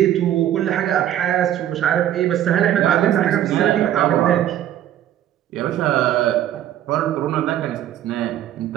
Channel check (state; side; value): quieter; left; 11.6 dB